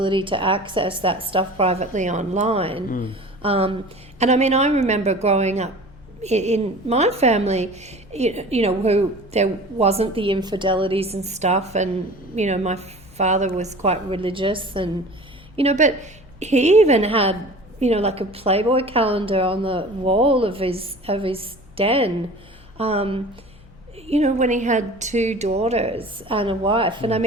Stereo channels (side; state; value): both; normal; correlation 0.41